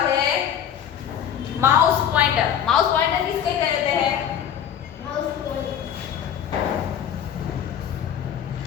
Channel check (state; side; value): quieter; right; 9.1 dB